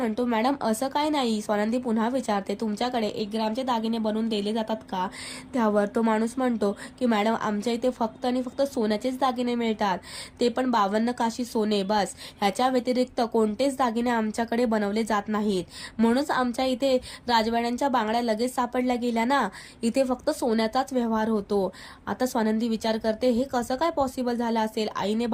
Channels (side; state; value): both; identical; correlation 1.00